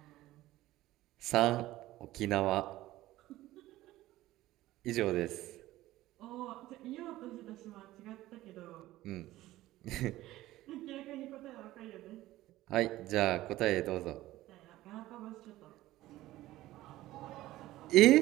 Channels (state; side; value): quieter; left; 16.2 dB